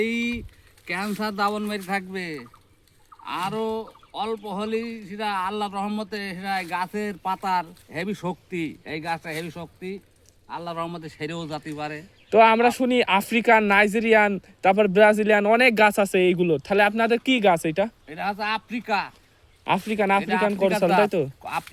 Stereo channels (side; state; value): both; identical; correlation 1.00